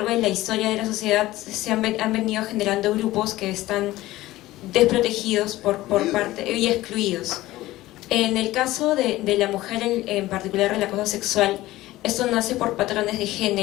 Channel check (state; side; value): quieter; right; 16.9 dB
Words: de la historia de la sociedad han venido generando grupos que están desprotegidos por parte y excluidos. En el caso de la mujer, en particular el acoso sexual, esto nace por patrones de